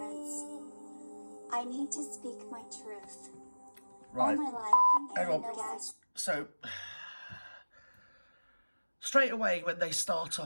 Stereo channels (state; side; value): inverted; both; correlation -1.00